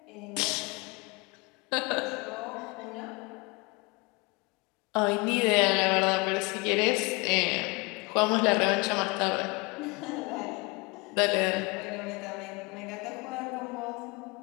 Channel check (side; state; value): right; quieter; 27.0 dB